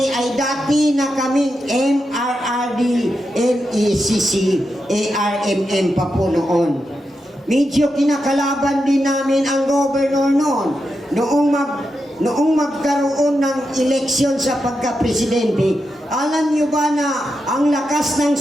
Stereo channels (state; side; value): normal; both; correlation 0.87